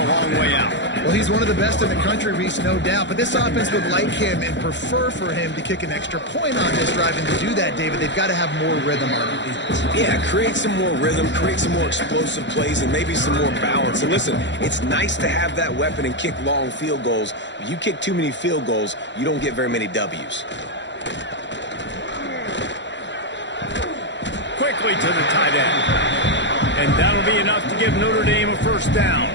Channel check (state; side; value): late; right; 0.52 ms